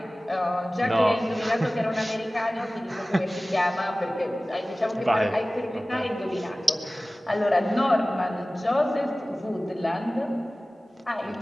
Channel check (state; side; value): normal; both; correlation 0.97